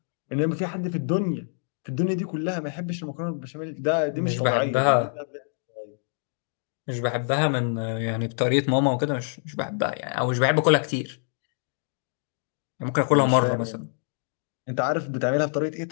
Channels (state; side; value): silent; right; digital silence